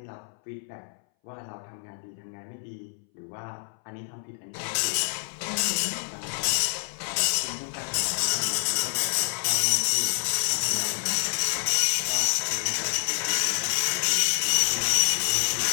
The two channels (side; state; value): right; silent; 60 dB below the other